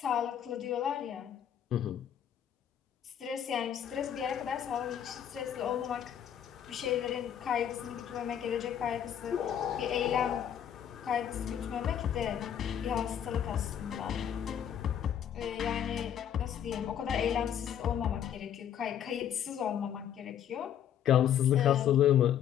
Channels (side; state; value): right; quieter; 9.6 dB